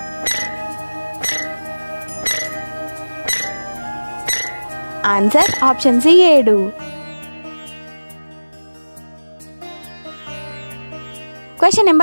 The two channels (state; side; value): inverted; both; correlation -1.00